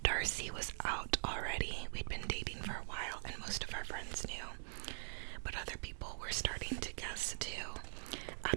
Darcy was out already. We'd been dating for a while and most of our friends knew. But other people were starting to guess too.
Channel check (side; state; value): left; silent; digital silence